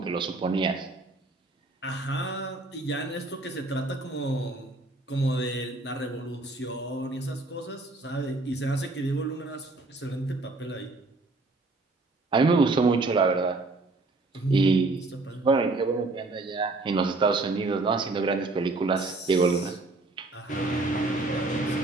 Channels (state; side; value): quieter; left; 3.2 dB